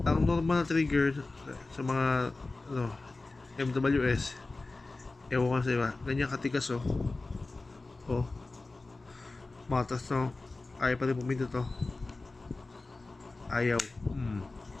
ang normal na trigger sa mga MWS, ewan ko sa iba, ganyan katigas matas no, ayaw pa rin pumindot to, ayaw.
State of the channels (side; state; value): right; quieter; 3.3 dB